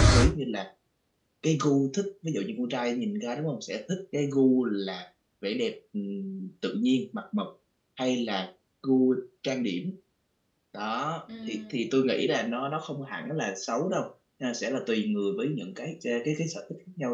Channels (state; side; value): identical; both; correlation 1.00